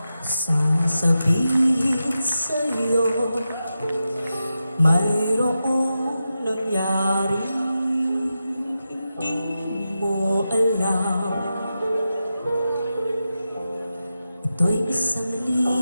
sasabihin sa'yo. Mayroong nangyari hindi mo alam. Ito'y isang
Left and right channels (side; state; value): both; inverted; correlation -0.90